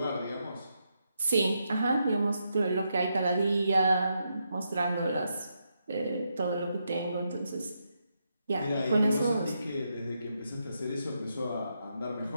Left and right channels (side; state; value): both; inverted; correlation -0.82